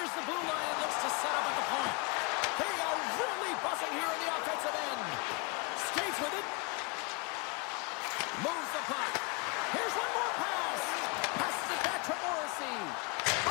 the blue line and looks to set up at the point. They are really buzzing here in the offensive end. Skates with it. Moves the puck. Here's one more pass. Passes it back to Morrissey.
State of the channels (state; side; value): quieter; right; 30.0 dB